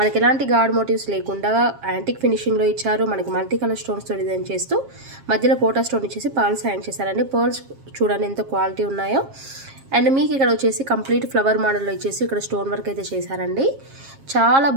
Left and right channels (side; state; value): left; late; 7.4 ms